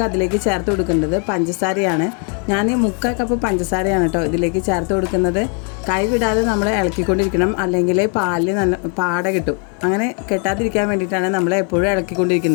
അതിലേക്ക് ചേർത്ത് കൊടുക്കേണ്ടത് പഞ്ചസാരയാണ്. ഞാൻ 3/4 കപ്പ് പഞ്ചസാരയാണ് കേട്ടോ ഇതിലേക്ക് ചേർത്ത് കൊടുക്കുന്നത്. കൈ വിടാതെ നമ്മൾ ഇളക്കിക്കൊണ്ടിരിക്കണം, അല്ലെങ്കിൽ പാലിൽ നല്ല പാട കിട്ടും. അങ്ങനെ കെട്ടാതിരിക്കാൻ വേണ്ടിയിട്ടാണ് നമ്മൾ എപ്പോഴും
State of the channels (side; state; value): right; quieter; 38.8 dB